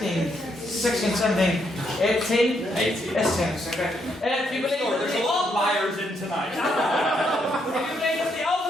16, 17, 18. 18. Yes, okay. If you believe there's a lot of liars in tonight. If you believe that the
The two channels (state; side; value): normal; both; correlation 0.76